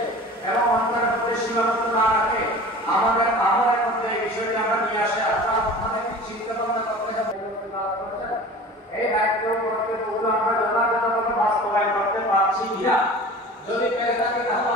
এবং অন্তরের মধ্যে সীমাবদ্ধ না রাখে আমাদের আমলের মধ্যে এই বিষয়টি আমরা নিয়ে আসে আমাদের চিন্তা ভাবনা করতে হবে। এই দায়িত্ব করতে পুরো আমরা যথাযথভাবে বাস্তবায়ন করতে পারছি কিনা, যদি পেরে থাকি তাহলে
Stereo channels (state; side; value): normal; both; correlation 0.40